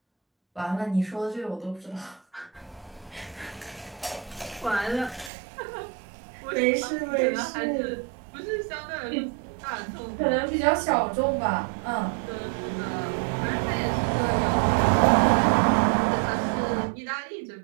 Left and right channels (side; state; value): left; drops out; at 5.3 s